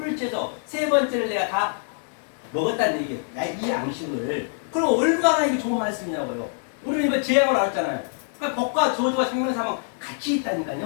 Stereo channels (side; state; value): right; silent; digital silence